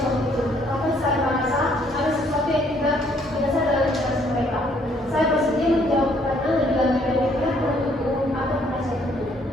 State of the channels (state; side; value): normal; both; correlation 0.65